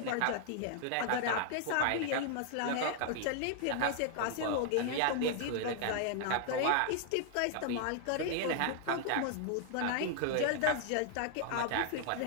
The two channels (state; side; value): different; both; correlation 0.00